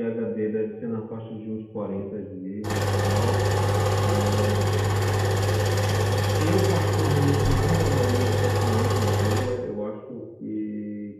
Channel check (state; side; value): identical; both; correlation 1.00